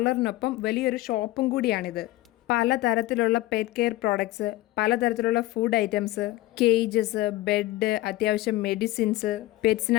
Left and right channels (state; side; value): quieter; right; 17.1 dB